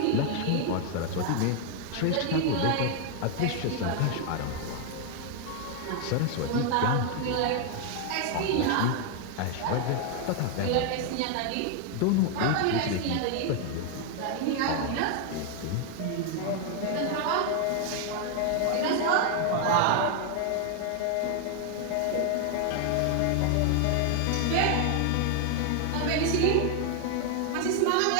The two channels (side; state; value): both; different; correlation 0.00